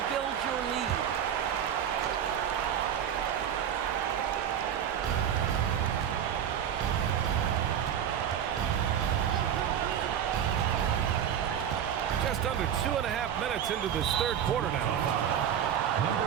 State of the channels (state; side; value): quieter; left; 9.2 dB